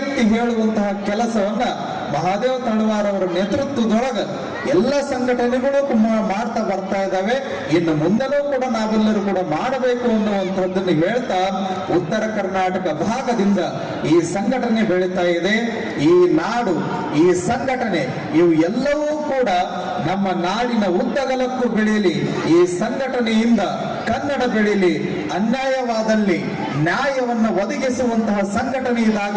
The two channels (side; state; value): both; identical; correlation 1.00